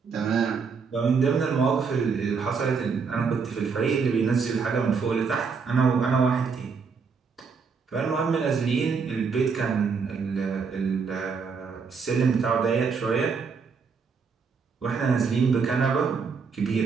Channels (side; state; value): left; quieter; 5.5 dB